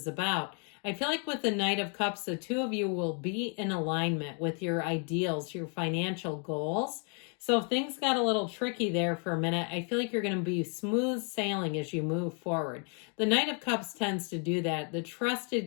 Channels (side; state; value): right; quieter; 39.5 dB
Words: about, I feel like with the Knight of Cups, the two of you will be in alignment with your ideals, your financial goals. So if things got a little tricky there for a minute, I feel like you're going to be smooth sailing as you move forward. The Knight of Cups tends to do that, the